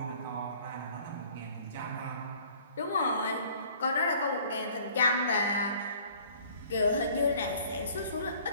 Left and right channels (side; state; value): both; inverted; correlation -0.54